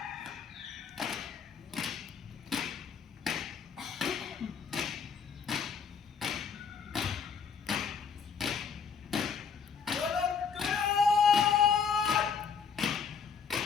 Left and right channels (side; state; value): right; quieter; 6.3 dB